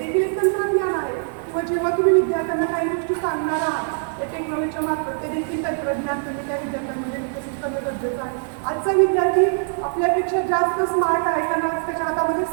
एक तंत्रज्ञान आहे. किंवा जेव्हा तुम्ही विद्यार्थ्यांना काही गोष्टी सांगणार आहात त्या टेक्नॉलॉजीच्या मार्फत, ते देखील तंत्रज्ञान तुम्ही त्या विद्यार्थ्यांमध्ये विकसित करणं गरजेचं आहे. आजचा विद्यार्थी आपल्यापेक्षा जास्त स्मार्ट आहे, कारण आज त्याच्या हातामध्ये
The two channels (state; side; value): silent; left; 64 dB below the other